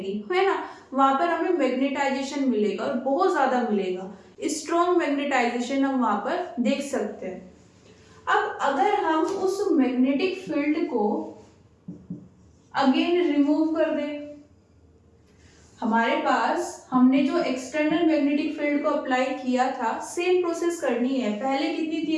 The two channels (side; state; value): both; identical; correlation 1.00